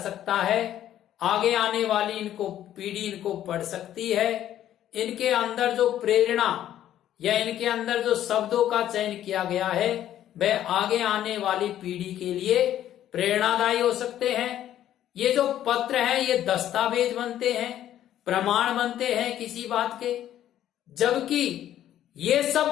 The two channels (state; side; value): quieter; right; 11.7 dB